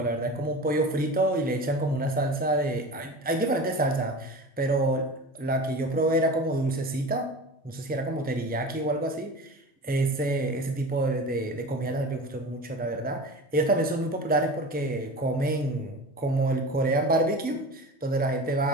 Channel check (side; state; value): both; normal; correlation 0.34